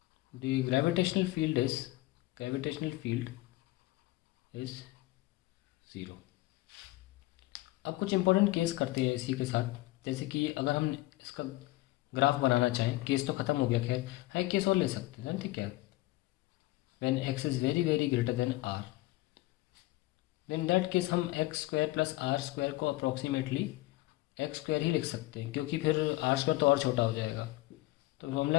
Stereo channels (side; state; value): right; quieter; 19.0 dB